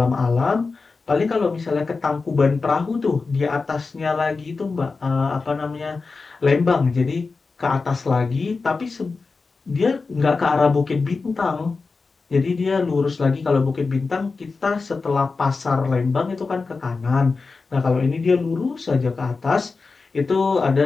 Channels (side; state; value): right; quieter; 4.2 dB